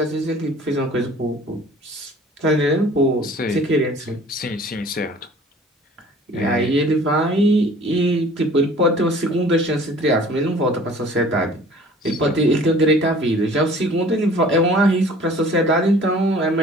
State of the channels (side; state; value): both; normal; correlation 0.49